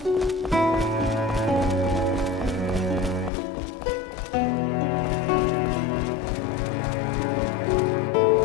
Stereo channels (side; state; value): right; drops out; at 3.3 s